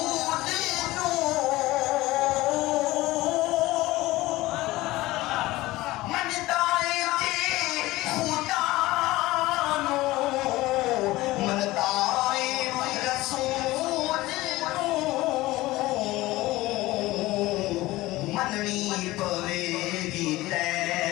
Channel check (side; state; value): right; quieter; 18.6 dB